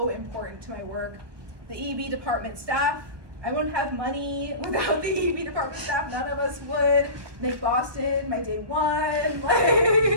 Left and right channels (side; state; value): left; late; 1.2 ms